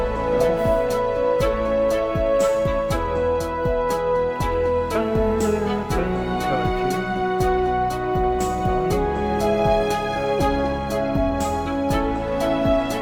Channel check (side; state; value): both; identical; correlation 1.00